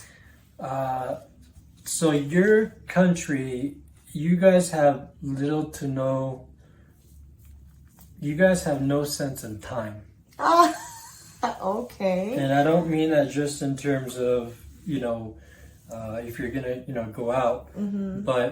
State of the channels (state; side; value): identical; both; correlation 1.00